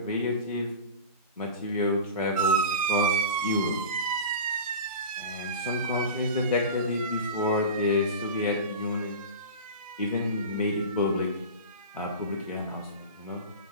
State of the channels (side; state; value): both; inverted; correlation -0.30